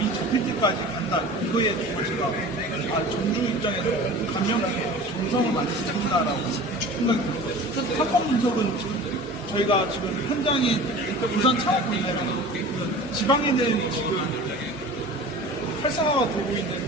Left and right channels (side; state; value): both; normal; correlation 0.39